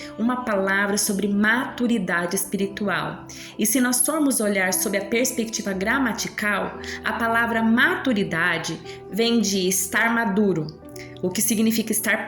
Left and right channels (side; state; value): both; identical; correlation 1.00